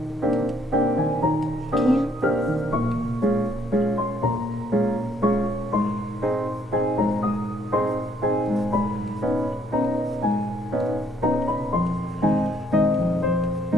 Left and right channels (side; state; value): both; normal; correlation 0.68